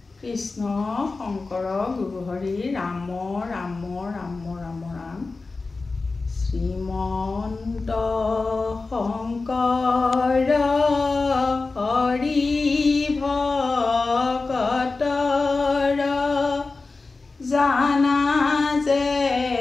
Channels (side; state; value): right; quieter; 3.8 dB